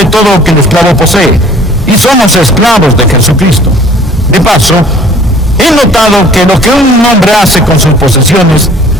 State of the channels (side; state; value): both; normal; correlation 0.52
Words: todo lo que el esclavo posee. Y somos esclavos de Jesucristo. De paso, he notado que lo que un hombre hace con sus posesiones